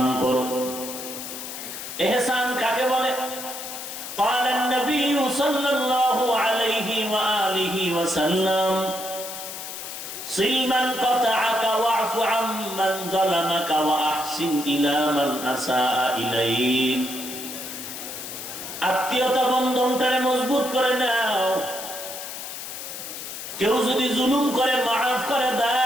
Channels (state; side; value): noise; left; hiss, 9 dB below the sound